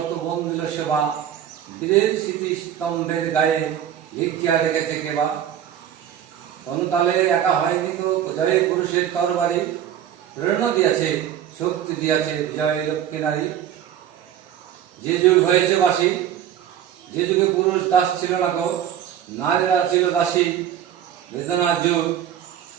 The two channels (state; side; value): quieter; left; 10.2 dB